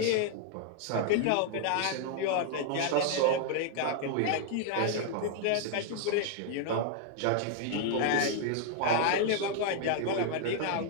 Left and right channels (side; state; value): both; different; correlation 0.00